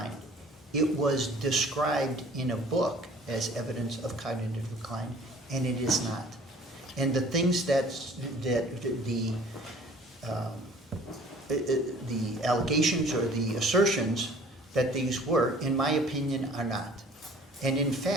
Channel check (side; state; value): both; normal; correlation 0.51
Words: It was described in a book as evidence of cognitive decline, and it is not. And the things that the allegations or the assertions that these were, in my opinion, are not. And in